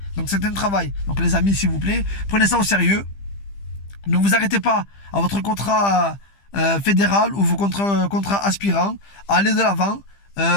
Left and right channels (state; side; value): late; right; 15 ms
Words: Donc c'est un travail. Donc les amis, s'il vous plaît, prenez ça au sérieux. Ne vous arrêtez pas à votre contrat fédéral ou vos contrats aspirants. Allez de l'avant.